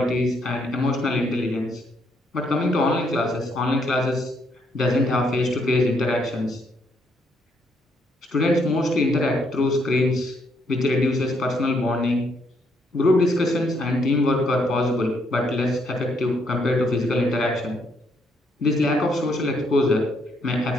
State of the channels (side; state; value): both; normal; correlation 0.73